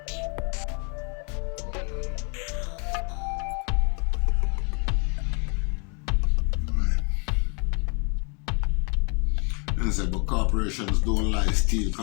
But corporations don't lie, steal,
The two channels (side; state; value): right; quieter; 36.2 dB